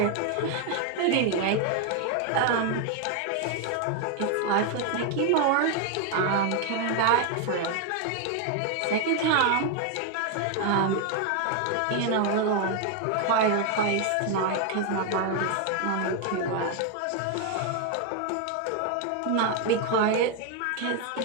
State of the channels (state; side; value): different; both; correlation 0.01